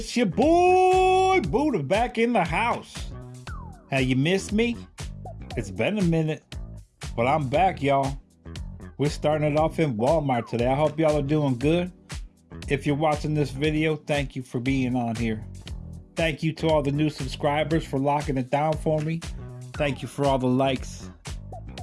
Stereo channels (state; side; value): identical; both; correlation 1.00